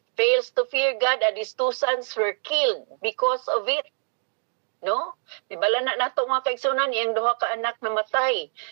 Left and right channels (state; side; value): silent; left; digital silence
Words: fails to fear God and his 2 sons were killed because of it. No? Dibala na nato mga kaigsuonan, iyang 2 ka anak namatay.